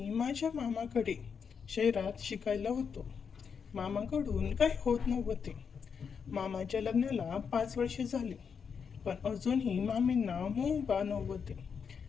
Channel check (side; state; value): right; quieter; 6.4 dB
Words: माझ्या मामाकडे शहरात शिकायला होतो. मामाकडून काही होत नव्हते. मामाच्या लग्नाला 5 वर्षे झाली, पण अजूनही मामींना मूल बाळ नव्हते.